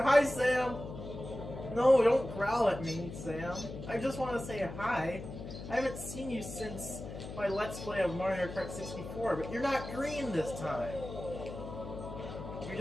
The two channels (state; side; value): noise; left; hum, 10 dB below the sound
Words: Hi, Sam! No, don't growl at me, Sam. I just want to say hi. I haven't seen you since my Let's Play of Mario Kart 64, but you're not green this time. You're